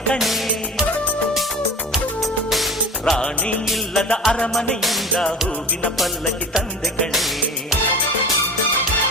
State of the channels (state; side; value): normal; both; correlation 0.34